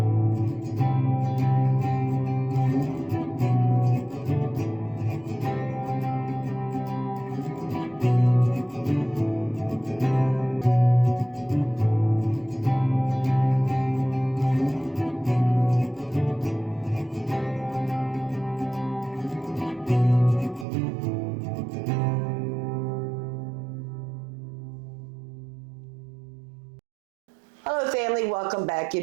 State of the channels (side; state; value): left; drops out; at 20.7 s